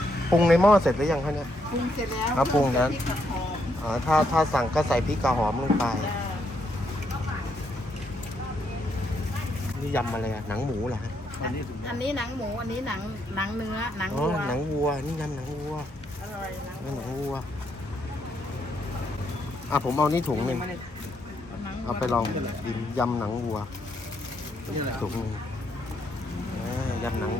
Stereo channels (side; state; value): both; normal; correlation 0.76